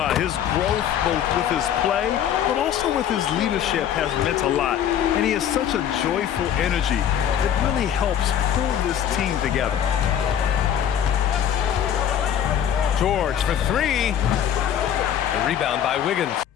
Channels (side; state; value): right; quieter; 9.6 dB